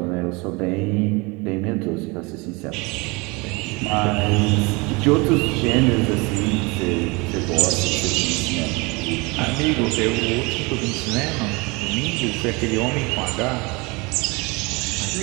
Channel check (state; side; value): quieter; left; 26.6 dB